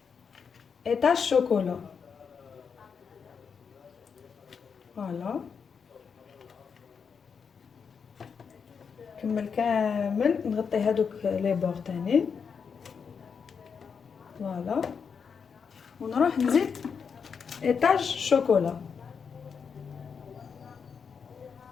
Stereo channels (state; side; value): quieter; right; 6.2 dB